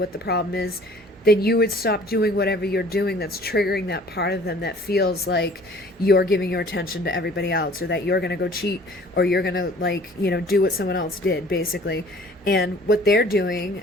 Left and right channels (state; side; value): normal; both; correlation 0.52